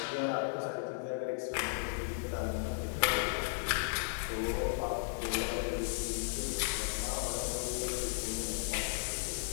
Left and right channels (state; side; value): silent; right; digital silence